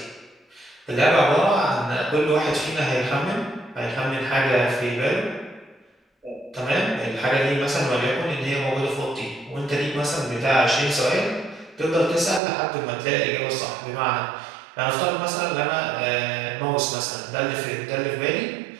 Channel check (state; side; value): drops out; left; at 12.4 s